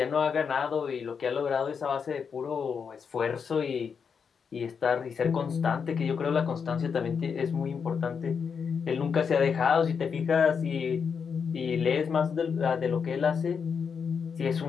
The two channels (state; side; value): quieter; right; 6.3 dB